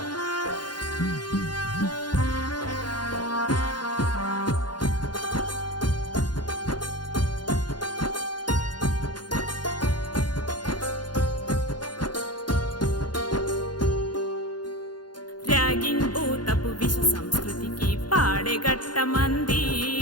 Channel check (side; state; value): right; late; 0.71 ms